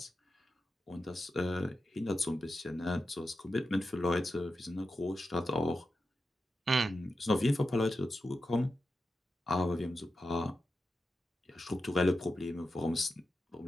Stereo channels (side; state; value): both; normal; correlation 0.90